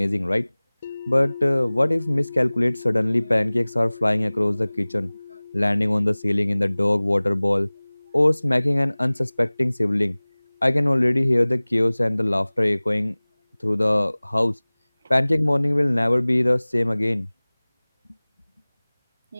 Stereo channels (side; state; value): both; inverted; correlation -1.00